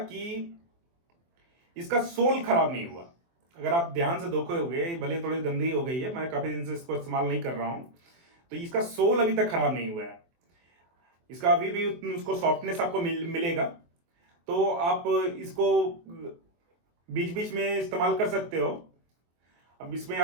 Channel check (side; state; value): left; late; 23 ms